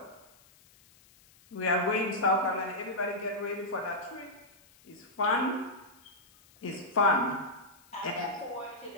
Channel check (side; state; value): left; noise; hiss, 28 dB below the sound